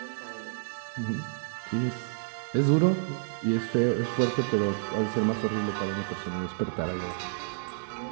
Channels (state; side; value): silent; left; digital silence